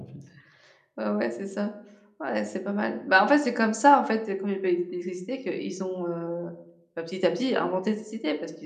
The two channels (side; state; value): both; identical; correlation 1.00